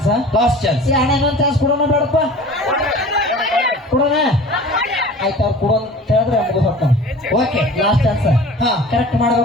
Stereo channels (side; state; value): both; normal; correlation 0.42